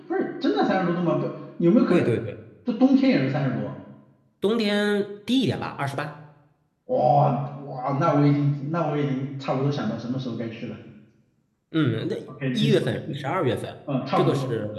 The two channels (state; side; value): identical; both; correlation 1.00